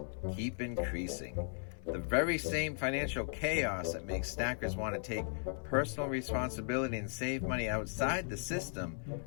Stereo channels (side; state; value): right; silent; 53 dB below the other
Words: keep increasing? The very same financial chaos that makes stackers want to take personal responsibility and save money outside the system